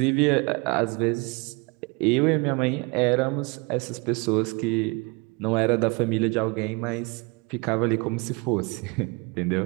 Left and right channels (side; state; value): left; quieter; 28.6 dB